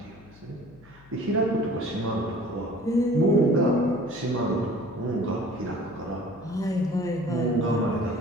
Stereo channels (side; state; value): left; noise; hum, 25 dB below the sound